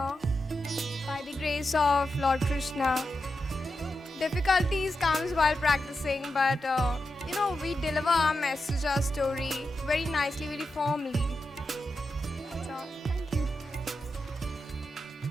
by the grace of Lord Krishna. Difficulties comes while practicing, but we deliver our message, our story very nicely, very formally. That's all. Thank you.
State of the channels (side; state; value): both; normal; correlation 0.88